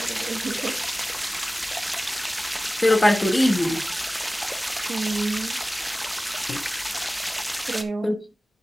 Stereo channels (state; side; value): normal; both; correlation 0.97